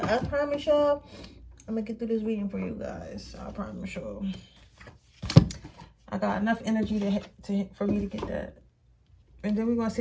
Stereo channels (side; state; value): both; identical; correlation 1.00